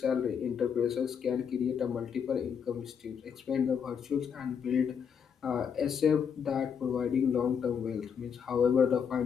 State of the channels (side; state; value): right; quieter; 7.2 dB